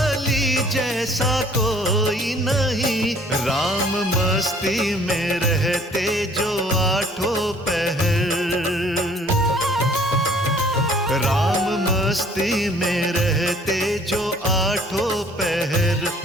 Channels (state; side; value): normal; both; correlation 0.56